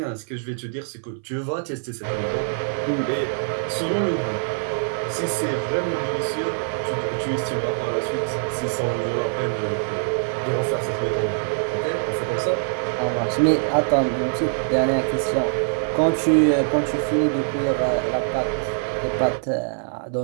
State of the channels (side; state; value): left; silent; 60 dB below the other